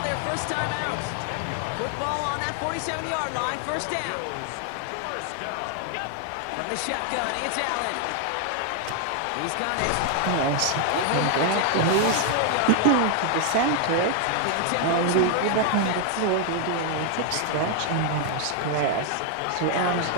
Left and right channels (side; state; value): both; different; correlation 0.00